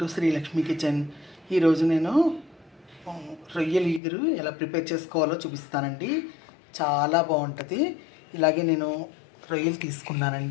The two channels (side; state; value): right; drops out; at 4.0 s